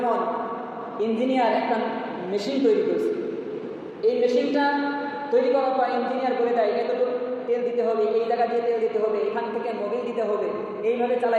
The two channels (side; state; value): both; identical; correlation 1.00